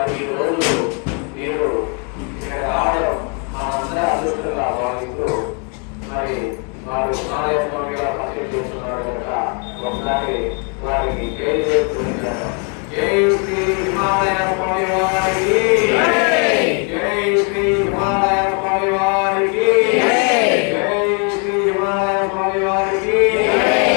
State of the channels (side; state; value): right; quieter; 37.7 dB